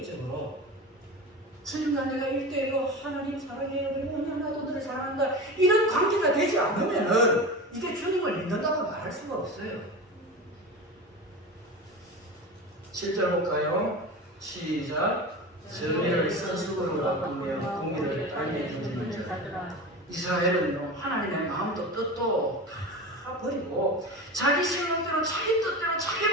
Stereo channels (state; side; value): normal; both; correlation 0.28